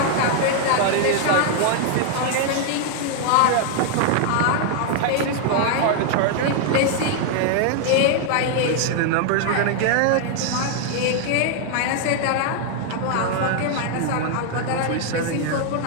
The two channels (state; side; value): different; both; correlation 0.00